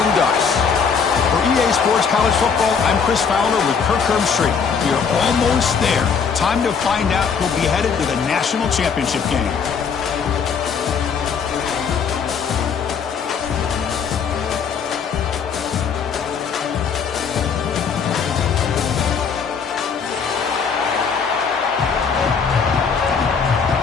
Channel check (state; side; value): quieter; right; 6.2 dB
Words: Ducks. For EA Sports College Football, I'm Chris Fowler with Kirk Herbstreit. We are almost there. Time to find out who'll be headed to the national championship game.